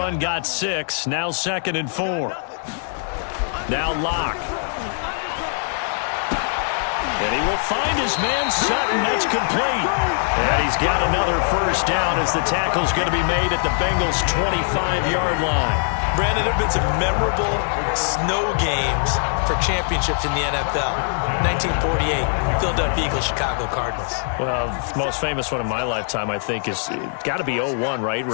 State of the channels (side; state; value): right; silent; digital silence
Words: got 6. Now 2nd and 4. Now Locke. And he will find his man Sutton. That's complete. And he's got another first down as the tackle's going to be made at the Bengals' 25-yard line. Brandon, there have been some memorable snow games for championships in the NFL. 1948, Philadelphia Eagles, Chicago Cardinals. Well, the most famous one in my lifetime, I think, is got to be 01, right?